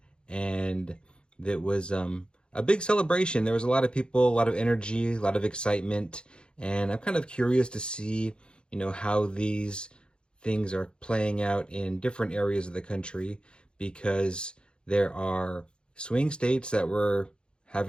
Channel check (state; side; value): late; right; 0.052 ms